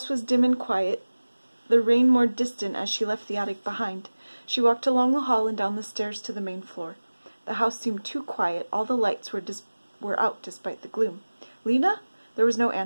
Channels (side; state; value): both; inverted; correlation -1.00